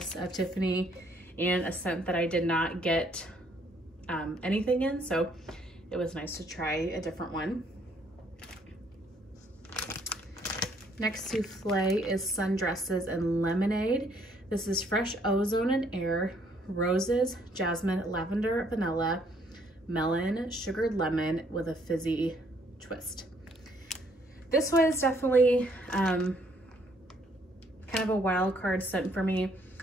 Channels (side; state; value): both; normal; correlation 0.66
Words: of Tiffany, and a scent that I did not get anything in, so it was nice to try a different one. Next souffle is Sundresses and Lemonade. This is fresh ozone and air, roses, jasmine, lavender, vanilla, melon, sugared lemon with a fizzy twist. This was definitely kind of a wild card scent for me.